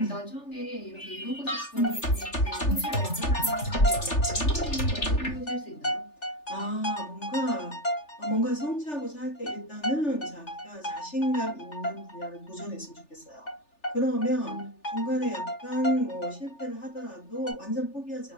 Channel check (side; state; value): right; late; 3.4 ms